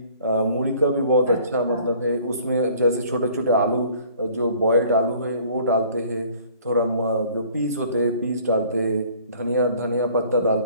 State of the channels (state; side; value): inverted; both; correlation -0.54